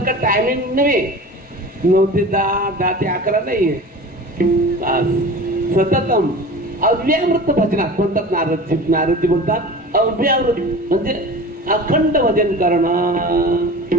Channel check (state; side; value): normal; both; correlation 0.36